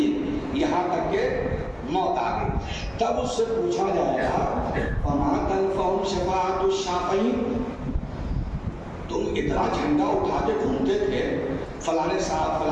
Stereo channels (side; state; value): both; identical; correlation 1.00